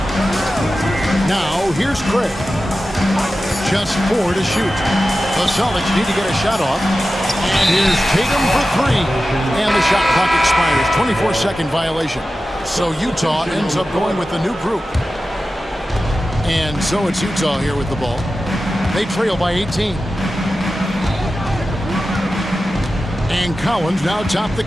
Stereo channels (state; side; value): normal; both; correlation 0.93